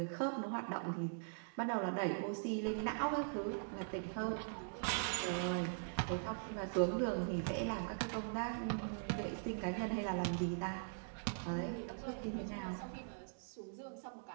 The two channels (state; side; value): silent; left; digital silence